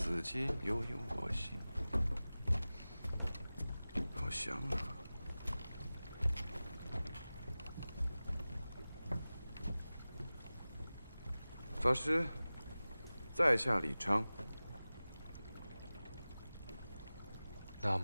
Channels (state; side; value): inverted; both; correlation -0.97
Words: 衿，悠悠我心。好香啊！法师，在下李昌。南